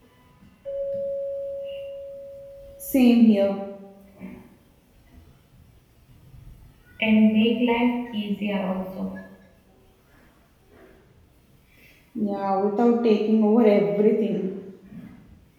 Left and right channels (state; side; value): identical; both; correlation 1.00